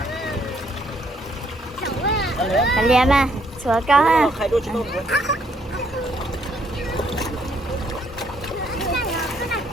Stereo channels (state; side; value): normal; both; correlation 0.69